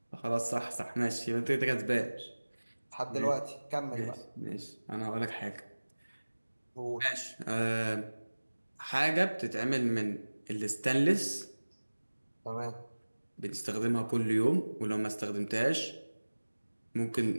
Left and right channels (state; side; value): inverted; both; correlation -1.00